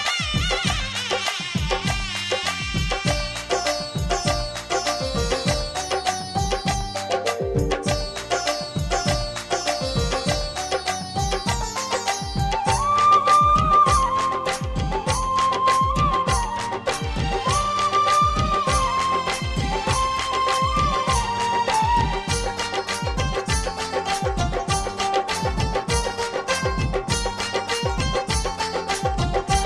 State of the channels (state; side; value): identical; both; correlation 1.00